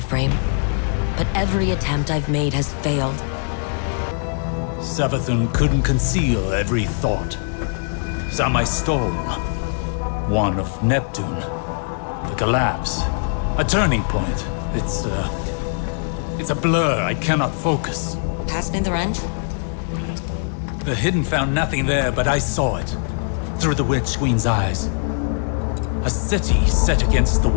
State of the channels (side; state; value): right; silent; digital silence